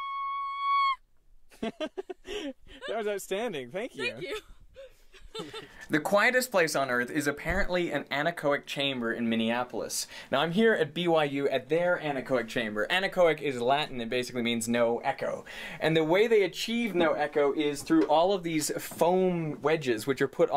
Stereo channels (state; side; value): identical; both; correlation 1.00